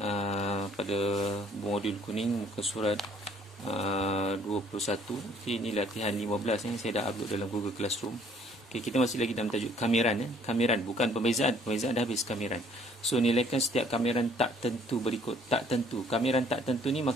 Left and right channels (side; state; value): both; normal; correlation 0.61